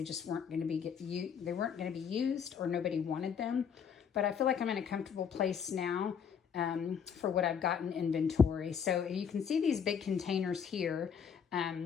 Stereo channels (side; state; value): right; quieter; 7.2 dB